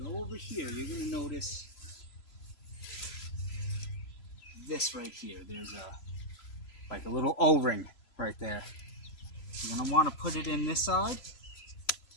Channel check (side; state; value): right; late; 3.0 ms